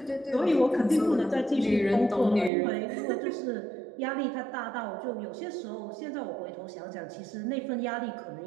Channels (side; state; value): left; drops out; at 2.5 s